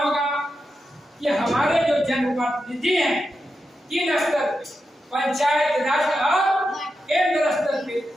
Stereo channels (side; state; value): both; normal; correlation 0.88